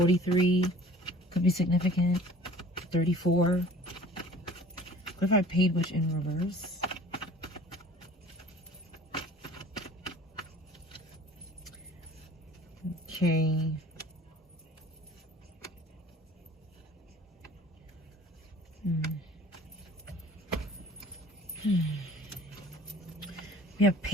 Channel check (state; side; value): normal; both; correlation 0.48